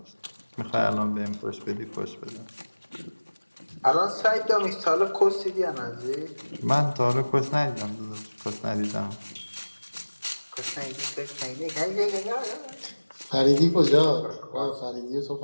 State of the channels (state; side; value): inverted; both; correlation -1.00